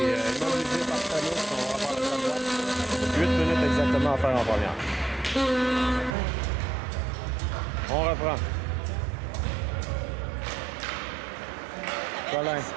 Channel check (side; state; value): left; drops out; at 6.2 s